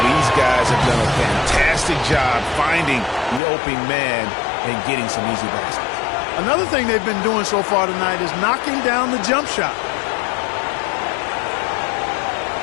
these guys have done a fantastic job finding the opening man and getting some easy baskets. Another thing they've been doing so far tonight is knocking down the jump shot.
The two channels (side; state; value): right; drops out; at 3.4 s